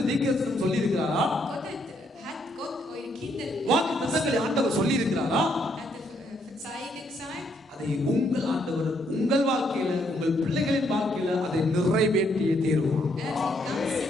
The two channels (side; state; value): both; normal; correlation 0.72